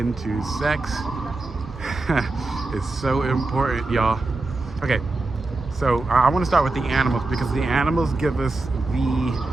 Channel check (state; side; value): quieter; left; 3.2 dB